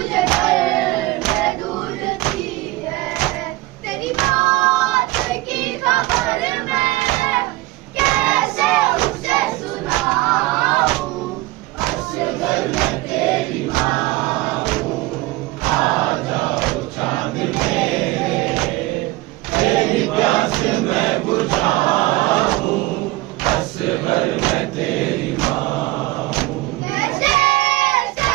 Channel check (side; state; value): left; quieter; 19.6 dB